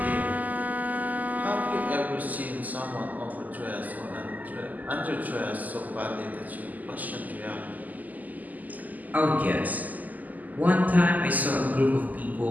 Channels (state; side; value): late; left; 0.081 ms